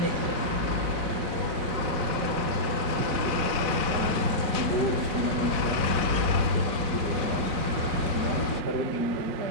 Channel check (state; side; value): late; left; 4.1 ms